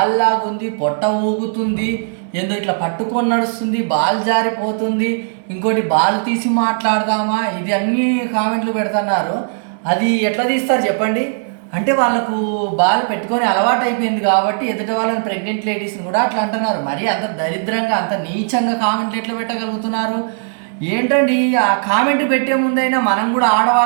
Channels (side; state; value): left; silent; digital silence